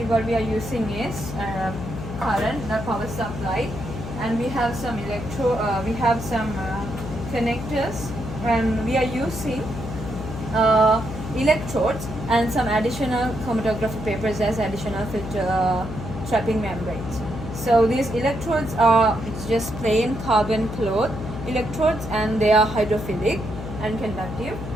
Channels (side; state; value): left; noise; hum, 8 dB below the sound